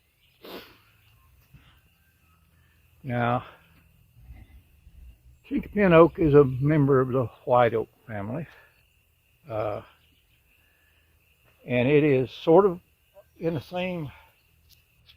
Now, chinky pin oak is a member of the white oak family, and it is sort of in the same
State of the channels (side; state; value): both; identical; correlation 1.00